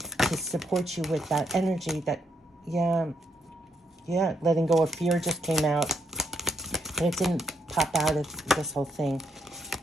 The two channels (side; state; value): both; normal; correlation 0.77